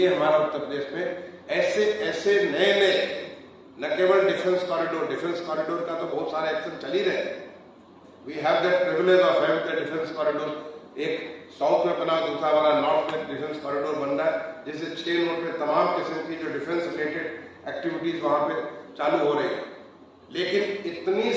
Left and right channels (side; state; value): both; identical; correlation 1.00